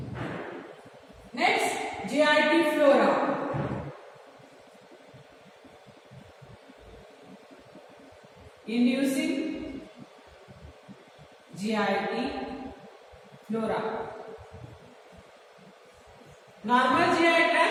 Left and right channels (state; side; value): identical; both; correlation 1.00